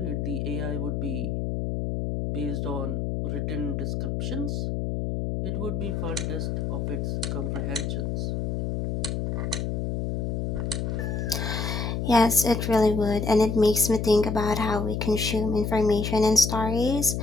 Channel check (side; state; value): left; noise; hum, 1 dB below the sound